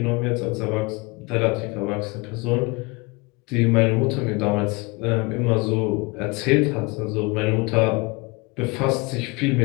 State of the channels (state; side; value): quieter; right; 26.5 dB